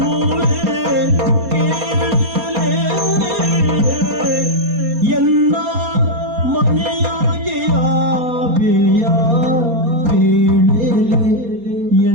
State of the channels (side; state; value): left; late; 4.3 ms